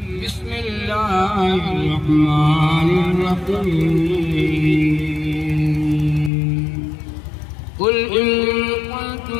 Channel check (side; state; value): right; drops out; at 6.3 s